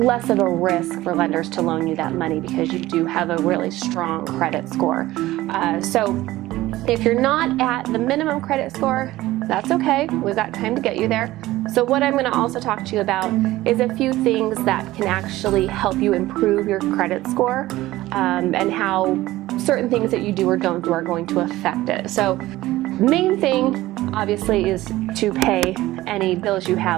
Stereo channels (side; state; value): left; quieter; 16.9 dB